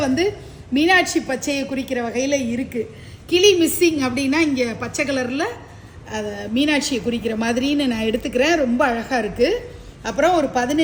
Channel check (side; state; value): both; identical; correlation 1.00